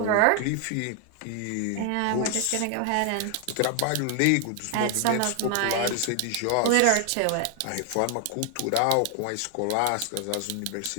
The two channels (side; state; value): both; different; correlation 0.00